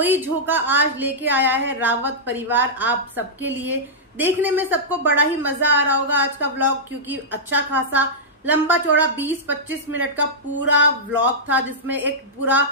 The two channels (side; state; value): both; normal; correlation -0.11